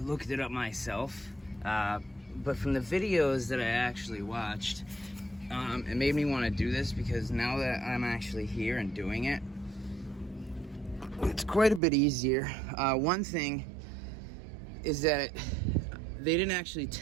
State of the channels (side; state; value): left; drops out; at 11.8 s